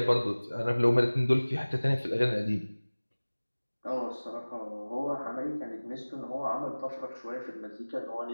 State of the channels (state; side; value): inverted; both; correlation -1.00